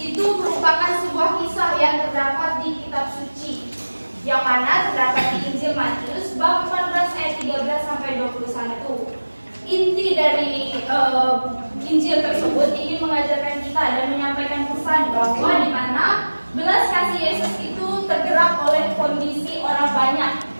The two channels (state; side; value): inverted; both; correlation -1.00